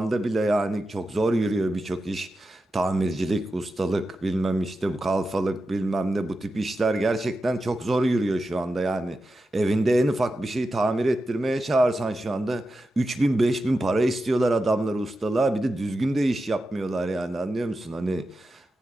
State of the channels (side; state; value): both; normal; correlation 0.91